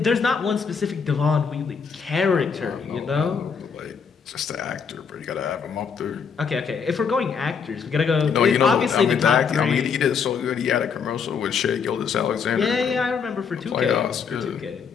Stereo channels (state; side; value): quieter; right; 6.2 dB